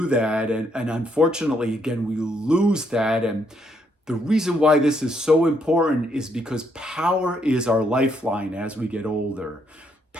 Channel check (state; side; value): normal; both; correlation 0.73